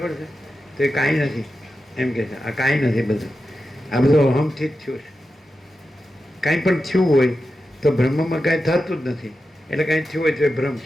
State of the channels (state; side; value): normal; both; correlation 0.91